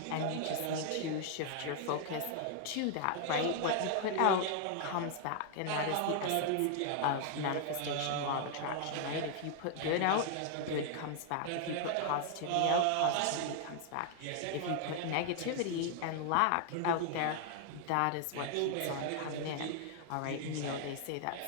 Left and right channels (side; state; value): both; different; correlation 0.00